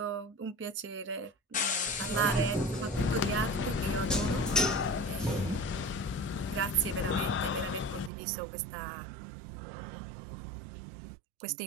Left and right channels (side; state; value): left; drops out; at 8.1 s